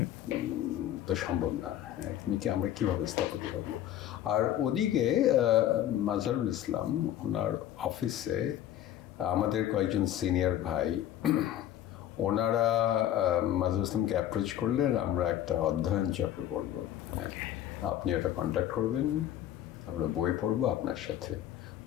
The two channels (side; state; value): right; quieter; 11.9 dB